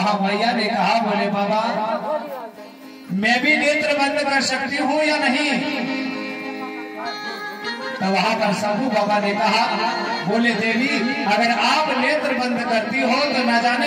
भैया ने कहा बोले बाबा मैं भी नेत्र बंद कर सकती हूँ या नहीं? तो वहां पर साधु बाबा ने कहा बोले देवी अगर आप नेत्र बंद करती हो तो ना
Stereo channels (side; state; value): both; identical; correlation 1.00